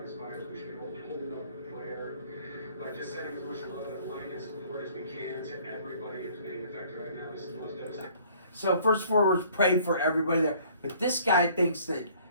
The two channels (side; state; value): both; inverted; correlation -0.57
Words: these fires, we should be holding up in prayer, by just sending as much love and light and support as we can to everybody who's being affected right now. This is the most devastating. So first and foremost, pray for everybody there. But this guy thinks that